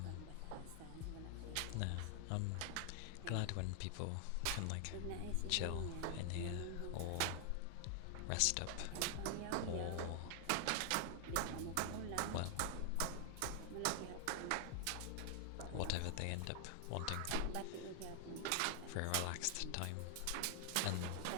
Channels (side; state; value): both; different; correlation 0.00